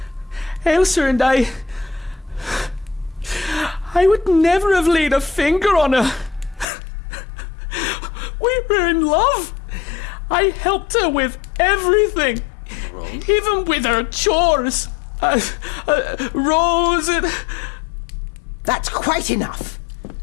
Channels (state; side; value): drops out; right; at 6.7 s